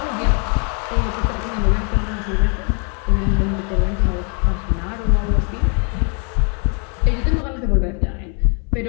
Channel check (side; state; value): right; quieter; 37.9 dB